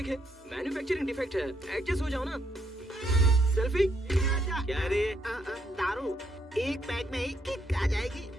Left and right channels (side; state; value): both; normal; correlation 0.75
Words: मैन्युफैक्चरिंग डिफेक्ट है, एडजस्ट हो जाओ ना। सेल्फी? क्या रे? दारू एक पैक में ही किक आ जाएगी।